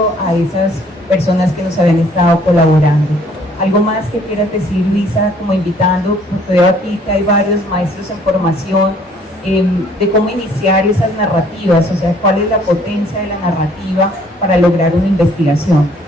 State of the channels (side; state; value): both; normal; correlation 0.60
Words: a esas personas que nos habían estado colaborando. ¿Algo más que quieras decir, Luisa, como invitando? Porque veo aquí que hay varios maestros en formación, de cómo iniciar esas narrativas, o sea, cuál es la potencia de la narrativa para lograr una investigación.